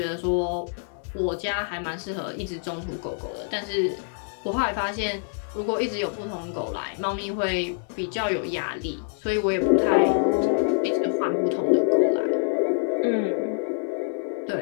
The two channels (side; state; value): right; silent; digital silence